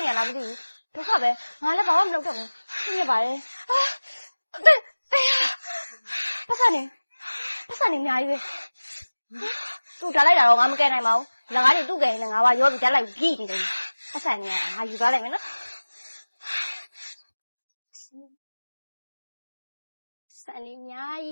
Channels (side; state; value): both; inverted; correlation -1.00